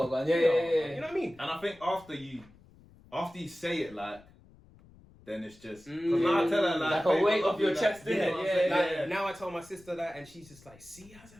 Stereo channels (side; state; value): left; noise; rumble, 25 dB below the sound